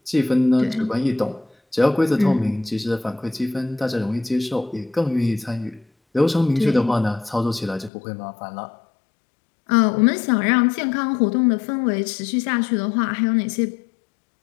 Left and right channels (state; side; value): drops out; right; at 7.9 s